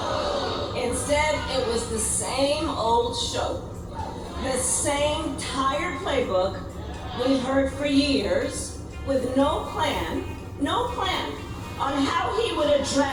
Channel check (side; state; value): both; identical; correlation 1.00